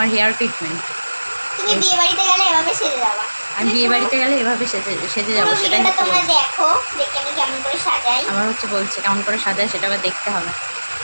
হেয়ার ট্রিটমেন্ট। তুমি বিয়ে বাড়িতে গেলে এভাবে সেজে যাবা। আমি বিয়ে বাড়িতে গেলে এভাবে সেজে যাবো, সেটাই হচ্ছে। তোমরা দেখো, দেখে আমি কেমন করে সাজাই। আমার হচ্ছে বলছে কেমন করে সাজায়, সেটা আবার দেখতে হবে।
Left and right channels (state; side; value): inverted; both; correlation -1.00